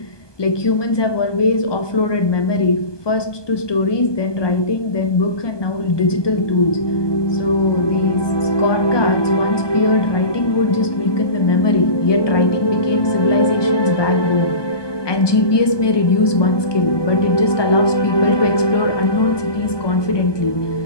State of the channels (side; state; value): right; late; 1.2 ms